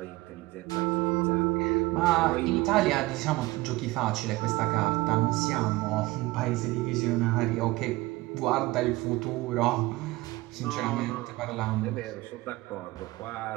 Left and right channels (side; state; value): left; quieter; 20.2 dB